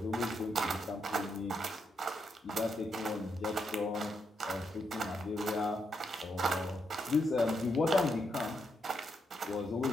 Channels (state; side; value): normal; both; correlation 0.80